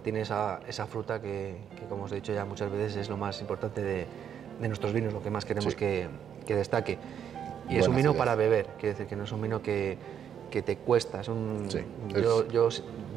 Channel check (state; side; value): quieter; left; 8.8 dB